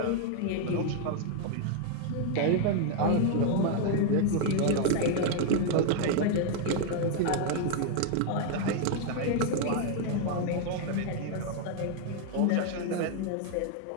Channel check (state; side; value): different; both; correlation 0.00